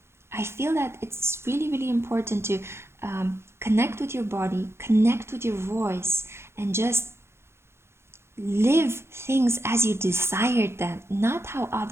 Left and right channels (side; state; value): left; late; 0.12 ms